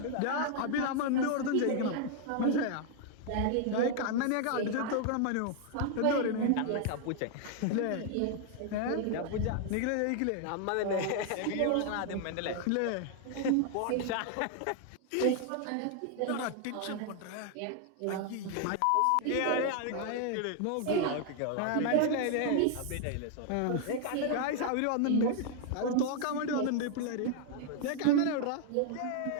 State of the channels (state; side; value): different; both; correlation 0.00